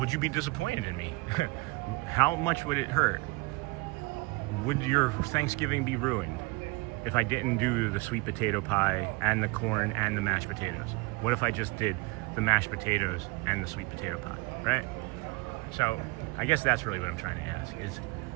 you be disappointed in me? How much would it hurt? Would your Thanksgiving be ruined if I didn't do the sweet potato pie and the corn and the mashed potatoes? What if I just did the mashed potatoes and the sweet potato pie, right? So I guess that's really what I'm trying to ask is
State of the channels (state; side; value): quieter; left; 25.2 dB